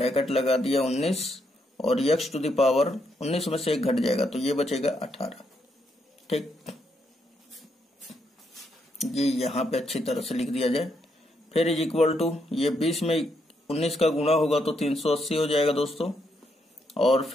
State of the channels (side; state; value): both; normal; correlation 0.78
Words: लगा दिया 19 और x टू दी पावर 19 में से एक घट जाएगा तो ये बचेगा 18। ठीक, ये यहाँ पे अच्छी तरह से लिख दिया जाए। फिर इज इक्वल टू, ये 20 में 19 का गुणा होगा तो 380 हो जाएगा दोस्तों, और